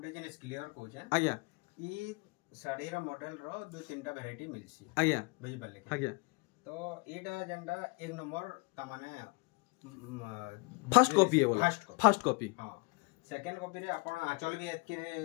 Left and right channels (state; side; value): quieter; right; 29.1 dB